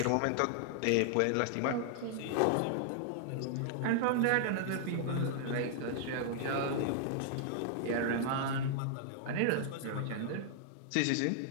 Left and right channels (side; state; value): both; different; correlation -0.01